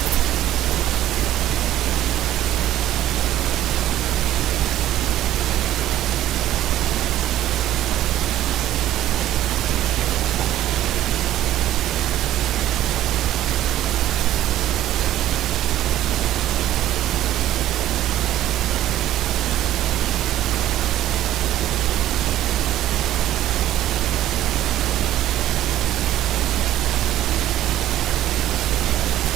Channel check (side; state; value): left; quieter; 13.3 dB